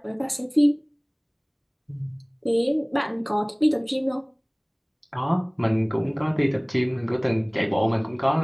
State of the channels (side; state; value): both; identical; correlation 1.00